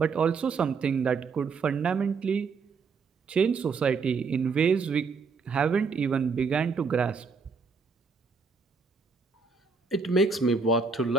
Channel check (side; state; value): left; quieter; 5.0 dB